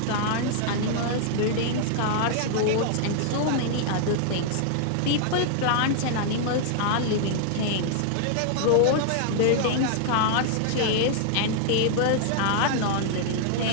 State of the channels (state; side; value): different; both; correlation -0.01